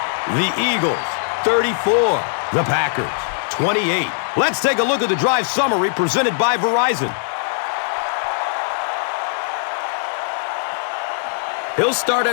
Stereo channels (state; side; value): silent; right; digital silence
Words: the Eagles 34, the Packers 28. Let's take a look at the drive summary presented by Verizon. He'll start